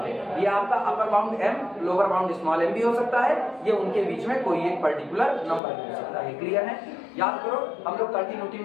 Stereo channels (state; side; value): drops out; right; at 5.6 s